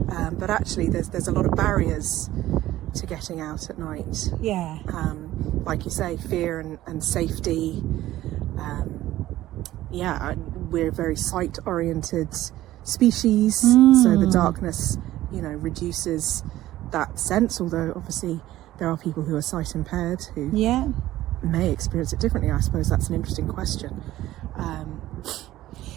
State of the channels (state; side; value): quieter; left; 15.0 dB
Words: But actually, there's a lot of barriers to getting out at night. Yeah. Like you say, fear and safety. We're a very sight-oriented species, so the darkness, reduces that sense. Although obviously there are people who are sight impaired who may experience it differently. I suppose that's an interesting question.